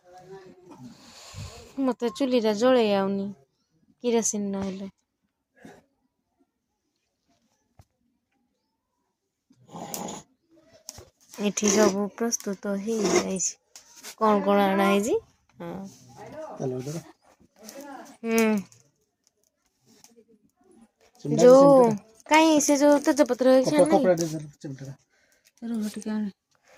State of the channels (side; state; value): both; identical; correlation 1.00